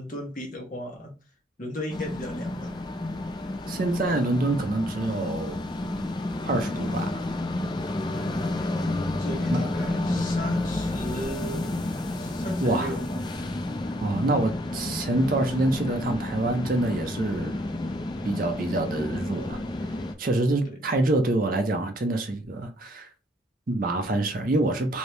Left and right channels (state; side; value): normal; both; correlation 0.68